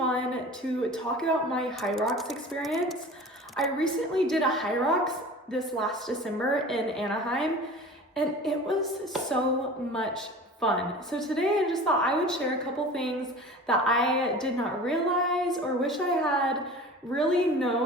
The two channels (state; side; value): normal; both; correlation 0.39